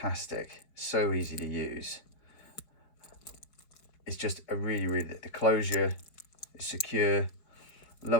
so easy to use. It's just a really, the closure is secure,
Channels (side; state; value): right; late; 4.7 ms